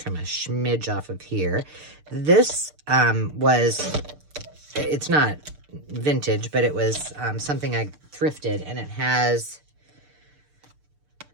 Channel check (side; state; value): left; late; 6.7 ms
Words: a smidge off of here. This it's not vintage, but it was something I thrifted, and it has